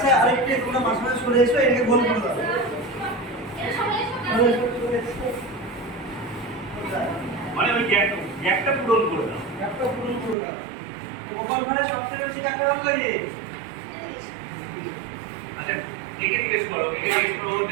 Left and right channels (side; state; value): left; drops out; at 10.4 s